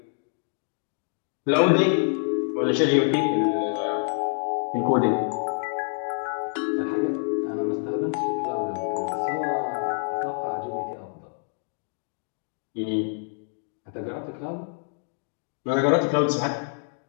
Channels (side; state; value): right; silent; 60 dB below the other